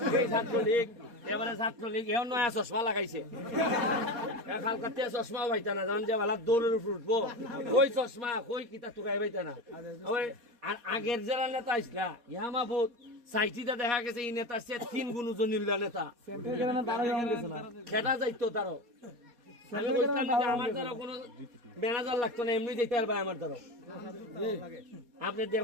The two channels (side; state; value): left; late; 4.2 ms